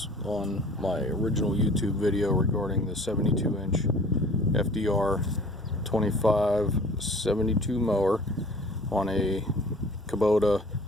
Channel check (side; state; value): both; normal; correlation 0.47